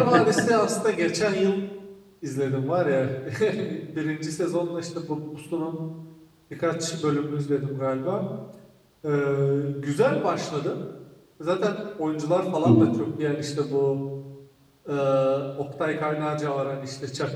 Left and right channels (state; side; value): identical; both; correlation 1.00